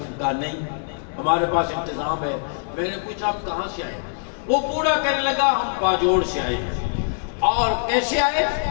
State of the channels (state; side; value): silent; right; digital silence